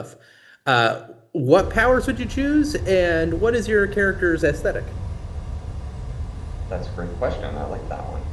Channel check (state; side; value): identical; both; correlation 1.00